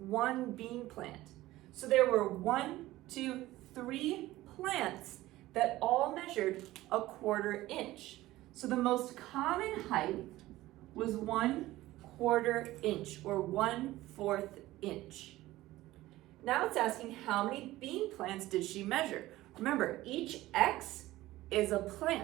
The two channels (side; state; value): left; quieter; 16.9 dB